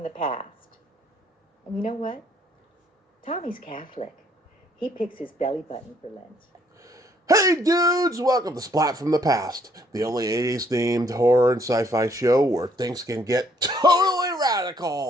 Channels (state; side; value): normal; both; correlation 0.66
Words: the Past. And you know what? Tommy's Catholic. He picks his belly button for Lent. Hey dudes, welcome to Splat from the Past, the only 80s themed horror and sci-fi show where things can get totally